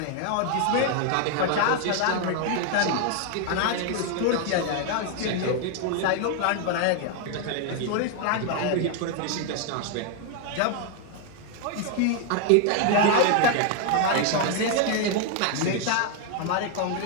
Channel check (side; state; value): both; different; correlation 0.00